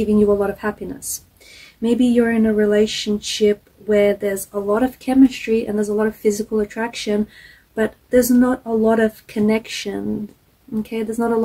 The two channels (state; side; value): identical; both; correlation 1.00